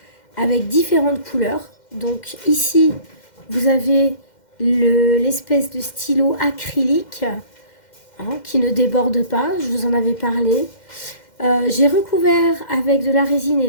avec différentes couleurs. Donc ici, vous avez l'espèce de stylo acrylique qui ne déborde pas, je vous en avais parlé. J'ai recouvert avec de la résine et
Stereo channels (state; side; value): late; right; 2.1 ms